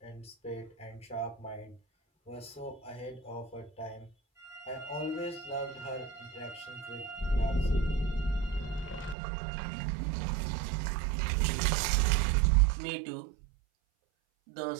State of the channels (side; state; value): left; drops out; at 9.2 s